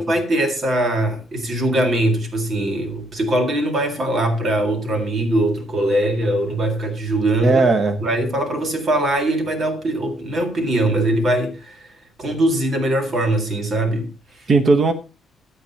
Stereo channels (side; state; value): both; normal; correlation 0.70